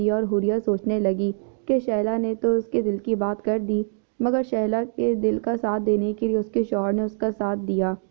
اور حوریہ سوچنے لگی کہ شیلا نے تو اس کے دل کی بات کر دی، مگر شیلا کے دل کا ساتھ دینے کے لیے اس کے شوہر نے اس کا ساتھ دیا۔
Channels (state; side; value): silent; left; digital silence